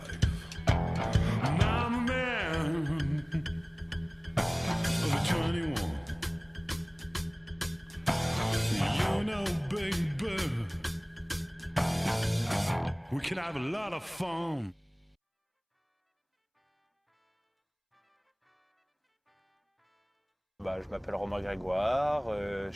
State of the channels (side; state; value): both; identical; correlation 1.00